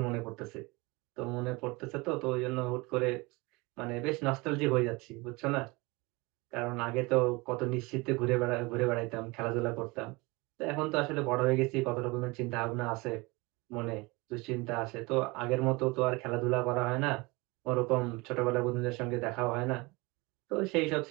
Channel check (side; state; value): left; quieter; 24.9 dB